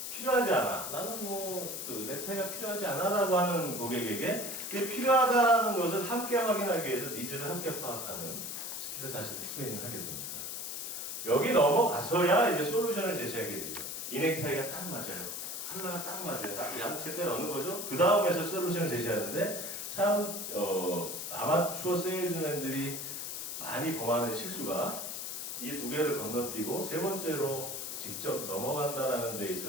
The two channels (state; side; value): noise; left; hiss, 5 dB below the sound